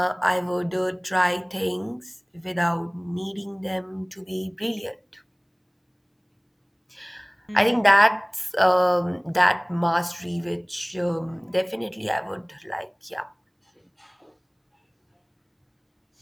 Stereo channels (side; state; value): both; identical; correlation 1.00